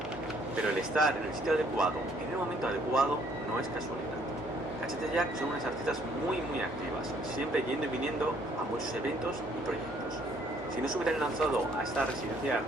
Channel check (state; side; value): noise; right; hum, 25 dB below the sound